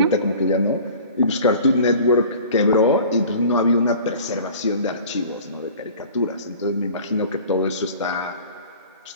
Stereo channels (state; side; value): inverted; both; correlation -0.44